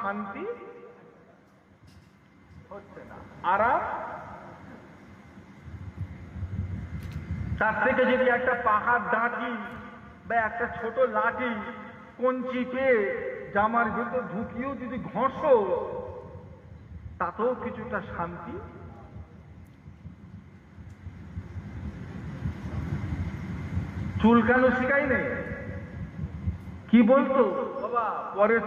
হচ্ছে না, আরাম। তার থেকে যদি একটা পাহাড় ডাঁটি বা একটা ছোট লাঠি কঞ্চি পেয়ে জামার ভিতর ঢুকিয়েও যদি ঘষো, তাতেও কিছুটা শান্তি। চুলকানো শিখাই নেই, কি বলতো বাবা, পরের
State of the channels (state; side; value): identical; both; correlation 1.00